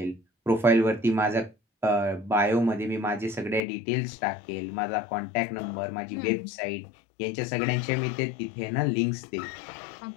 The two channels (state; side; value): drops out; right; at 3.7 s